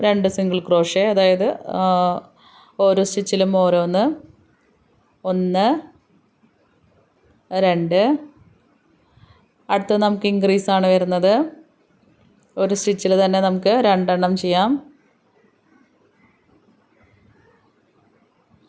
2 സിംഗിൾ ക്രോഷേ, അതായത് ഓരോ സ്റ്റിച്ചിലും ഓരോന്ന്. 1, 2. അടുത്തത് നമുക്ക് ഇൻക്രീസ് ആണ് വരുന്നത്. ഒരു സ്റ്റിച്ചിൽ തന്നെ നമുക്ക് 2 എണ്ണം ചെയ്യാം.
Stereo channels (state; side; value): identical; both; correlation 1.00